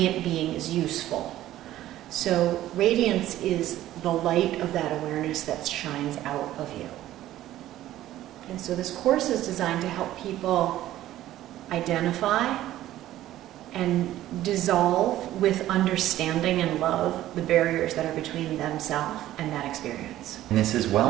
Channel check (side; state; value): left; quieter; 14.0 dB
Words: being is useful. So radiance is the light of that awareness that shines out of you. And so this course is designed to help people identify and dissolve with understanding and love the barriers that are between themselves and that experience. And this is